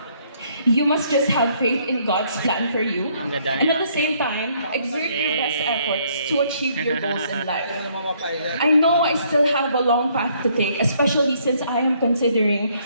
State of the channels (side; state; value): both; inverted; correlation -0.67